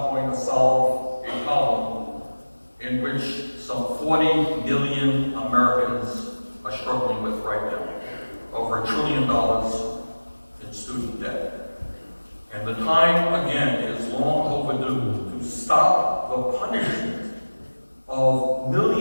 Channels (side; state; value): both; inverted; correlation -1.00